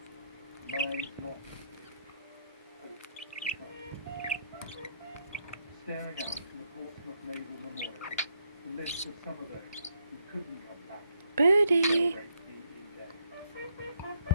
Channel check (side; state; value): both; inverted; correlation -0.76